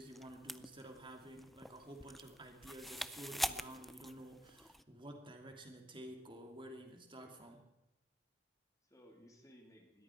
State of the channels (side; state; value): both; normal; correlation 0.85